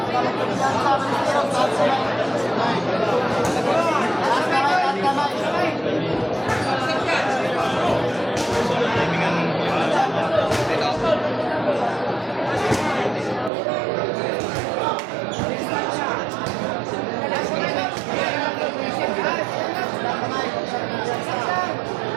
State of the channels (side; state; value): left; drops out; at 13.5 s